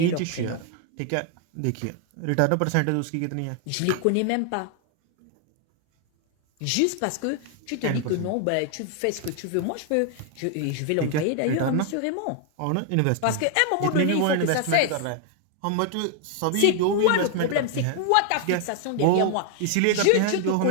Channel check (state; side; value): different; both; correlation 0.00